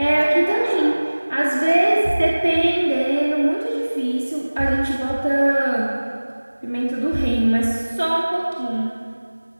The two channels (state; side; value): inverted; both; correlation -1.00